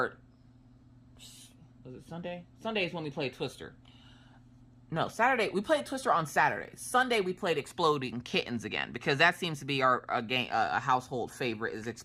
was it Sunday? Sunday is when we played Twister. No, Saturday. We played Twister on Saturday. Sunday we played Exploding Kittens again, because that seems to be a household favorite, is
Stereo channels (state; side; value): identical; both; correlation 1.00